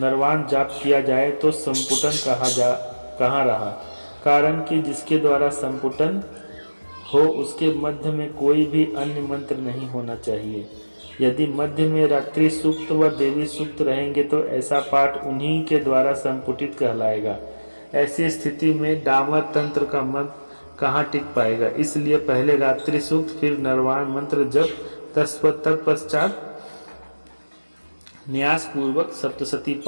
जाप किया जाए तो संपुटन कहाँ रहा। कारण कि जिसके द्वारा संपुटन हो उसके मध्य में कोई भी अन्य मंत्र नहीं होना चाहिए। यदि मध्य में रात्रि सूक्त व देवी सूक्त रहेंगे तो ऐसा पाठ उन्हीं के द्वारा संपुटित कहलाएगा। ऐसी स्थिति में डामर तंत्र का मत कहाँ टिक पाएगा। इसलिए पहले रात्रि सूक्त फिर नरवाण मंत्र जप तत्पश्चात न्यास पूर्वक सप्तशती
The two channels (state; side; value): inverted; both; correlation -1.00